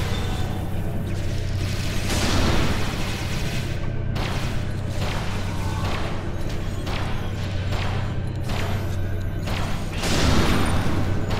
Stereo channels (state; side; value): identical; both; correlation 1.00